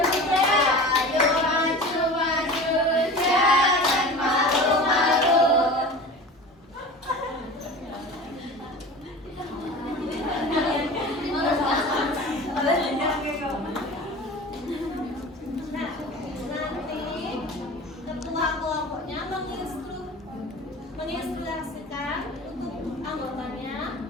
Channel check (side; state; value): both; normal; correlation 0.36